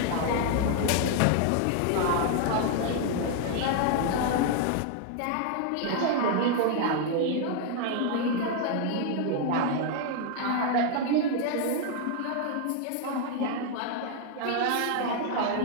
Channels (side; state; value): both; different; correlation 0.00